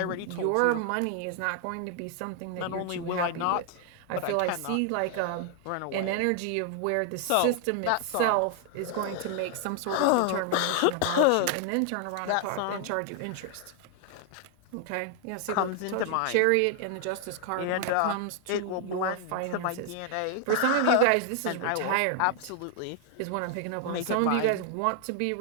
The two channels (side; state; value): both; different; correlation 0.00